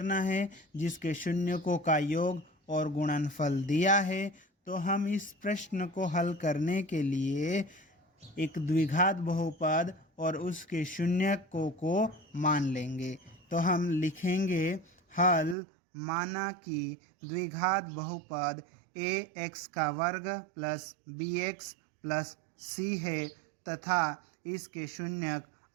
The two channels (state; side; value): drops out; left; at 15.6 s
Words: है जिसके शून्यकों का योग और गुणनफल दिया है। तो हम इस प्रश्न को हल करने के लिए एक द्विघात बहुपद और उसके शून्यकों को मान लेंगे। तो हम लिखेंगे हल, माना कि द्विघात बहुपद ax का वर्ग प्लस bx प्लस c है तथा इसके शून्यक